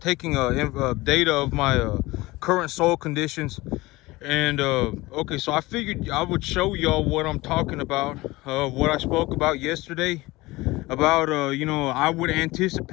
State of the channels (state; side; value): quieter; right; 20.5 dB